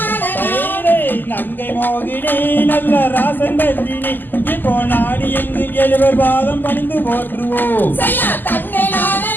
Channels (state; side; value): late; right; 0.089 ms